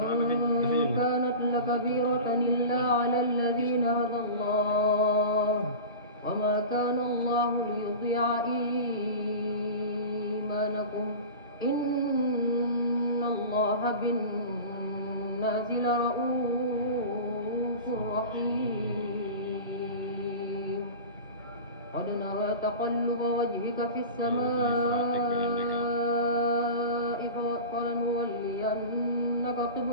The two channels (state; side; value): inverted; both; correlation -0.32